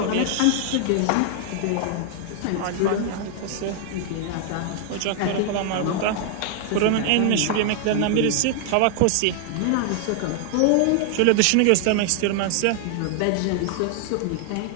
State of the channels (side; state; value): both; different; correlation 0.00